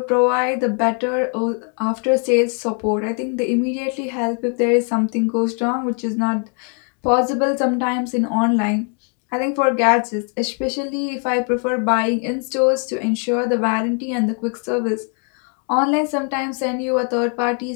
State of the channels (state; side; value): quieter; right; 39.5 dB